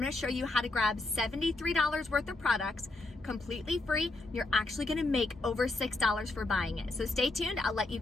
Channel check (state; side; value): quieter; right; 3.0 dB